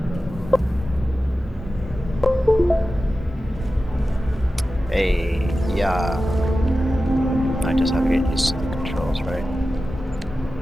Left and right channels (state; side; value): normal; both; correlation 0.94